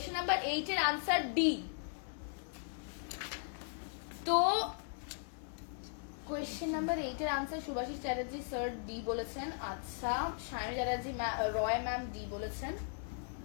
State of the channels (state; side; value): silent; right; 53 dB below the other